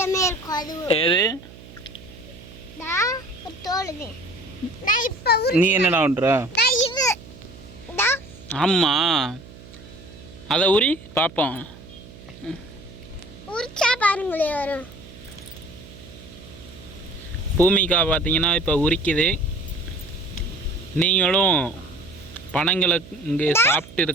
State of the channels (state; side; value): noise; right; hum, 19 dB below the sound